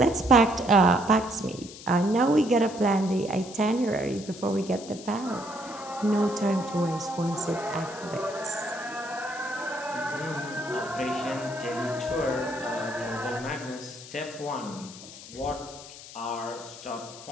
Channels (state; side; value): noise; left; hiss, 15 dB below the sound